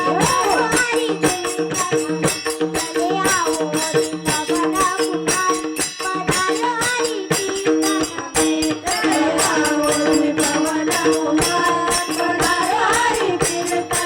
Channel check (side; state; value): both; identical; correlation 1.00